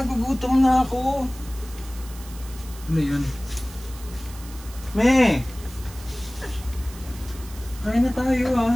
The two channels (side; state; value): right; noise; hiss, 18 dB below the sound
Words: na ako. Ano yun? Me! Kain na tayo